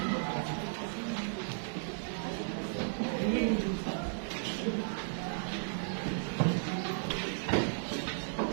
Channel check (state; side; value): silent; left; digital silence